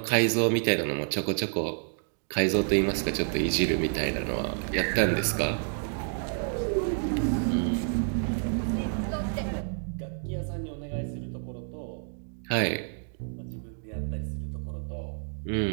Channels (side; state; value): left; silent; digital silence